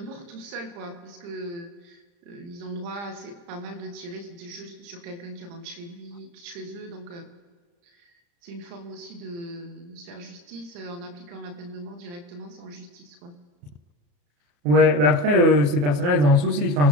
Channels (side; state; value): left; late; 34 ms